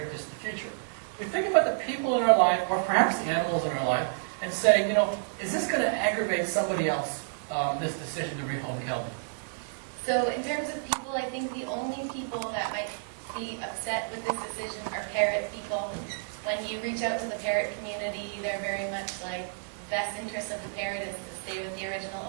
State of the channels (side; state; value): left; silent; 58 dB below the other